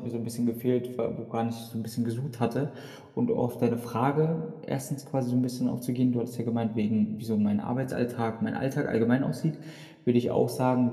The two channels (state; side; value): identical; both; correlation 1.00